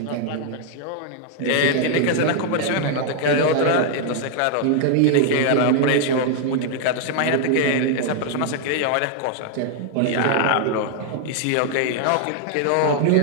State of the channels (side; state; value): both; different; correlation 0.00